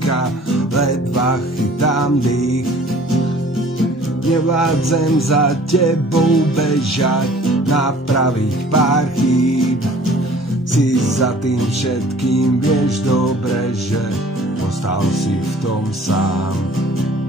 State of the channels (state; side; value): normal; both; correlation 0.51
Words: ledva chytám dých. Nevládzem za tebou bežať, napraviť pár chýb. Si za tým všetkým, vieš dobre, že ostal si v tom sám.